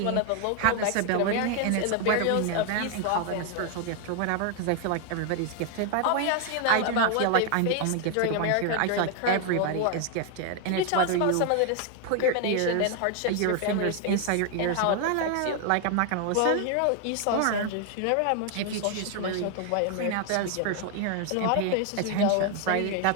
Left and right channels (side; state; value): both; different; correlation 0.00